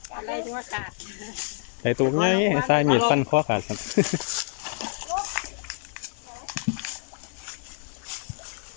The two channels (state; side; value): silent; right; 60 dB below the other